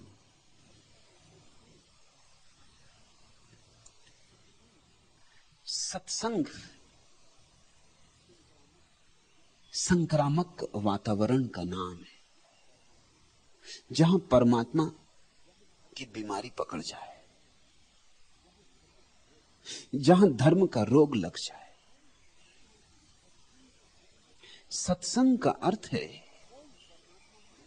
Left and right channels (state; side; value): identical; both; correlation 1.00